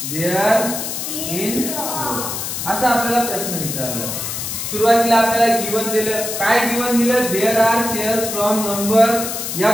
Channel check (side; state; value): left; noise; hiss, 4 dB below the sound